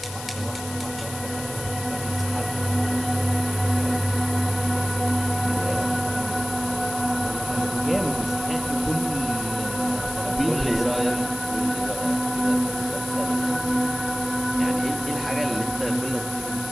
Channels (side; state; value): left; noise; hiss, 12 dB below the sound